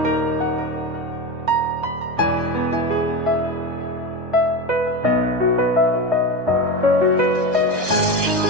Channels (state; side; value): late; left; 1.6 ms